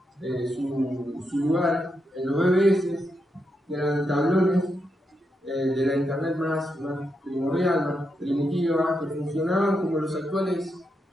su lugar en los BBS, que eran tablones de la internet más primordial, más primitiva, que funcionaban como los actuales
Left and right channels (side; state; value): both; normal; correlation 0.84